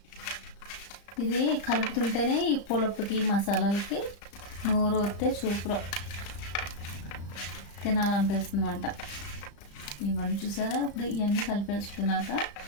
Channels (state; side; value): late; right; 35 ms